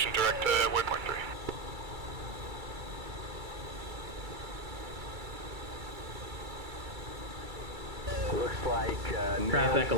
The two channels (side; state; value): left; late; 2.3 ms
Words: direct to waypoint 3. Looks like Traffic,